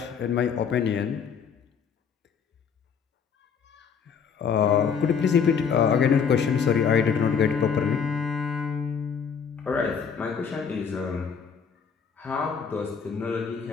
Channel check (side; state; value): right; quieter; 6.6 dB